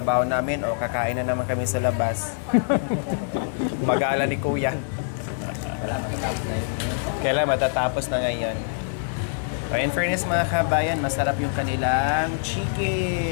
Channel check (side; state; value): right; silent; digital silence